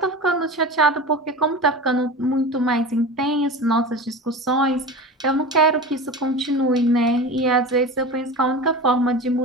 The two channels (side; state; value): both; normal; correlation 0.30